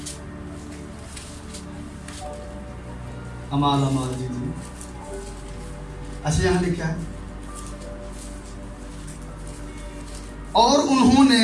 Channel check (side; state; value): both; identical; correlation 1.00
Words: امال جی. اچھا یہاں لکھا ہے, اور انہوں نے